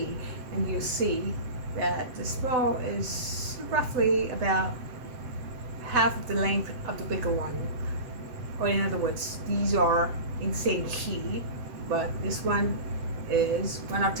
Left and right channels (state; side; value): late; left; 8.0 ms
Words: and you see that the small is roughly about half of the length of the bigger one. Or in other words, these are in the same key, but this one is one